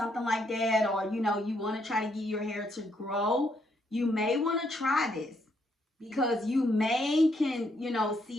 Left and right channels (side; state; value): both; normal; correlation 0.74